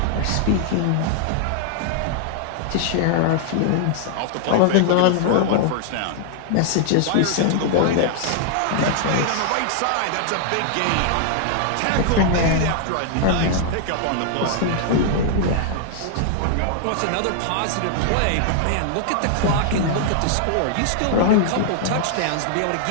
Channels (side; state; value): both; different; correlation -0.01